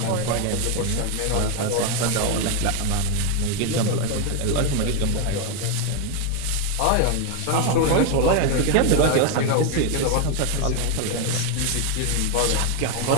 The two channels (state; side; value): different; both; correlation 0.01